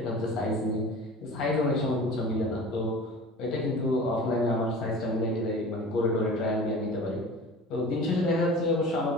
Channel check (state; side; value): normal; both; correlation 0.39